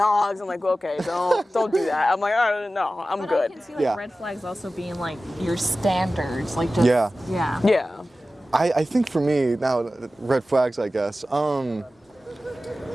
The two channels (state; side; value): normal; both; correlation 0.95